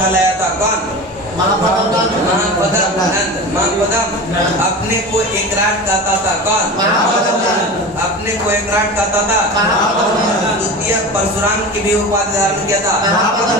लाया था। कौन? महापद्मनंद। अपने को एकराट कहता था। कौन? अपने को एकराट कहता था। द्वितीय परशुराम की भी उपाधि धारण किया था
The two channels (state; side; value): normal; both; correlation 0.30